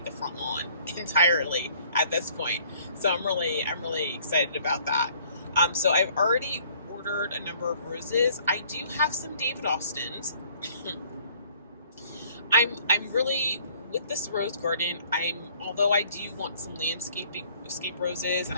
the front lawn entirely at this point. So I'm really excited about that. So I've already ordered a number of roses. I do have some David Austins. I'm really, with this rose garden, although I do want some landscape roses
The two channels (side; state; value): both; inverted; correlation -0.58